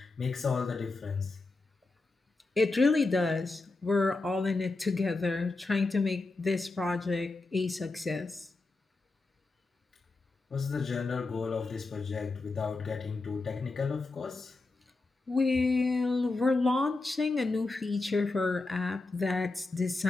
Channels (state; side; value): quieter; right; 3.4 dB